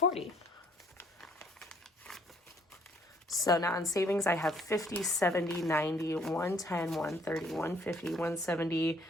So now in savings, I have 50, 70, 90, 110, 130, 150, 170,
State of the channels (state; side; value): normal; both; correlation 0.63